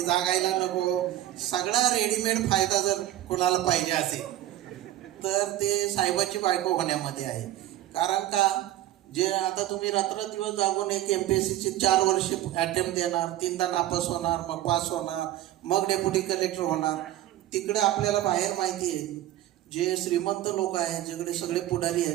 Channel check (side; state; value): left; quieter; 14.0 dB